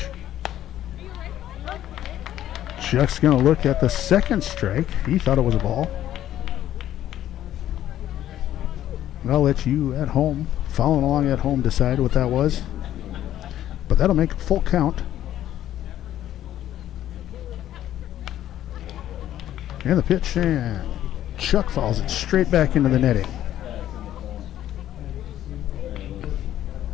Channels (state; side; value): quieter; right; 12.2 dB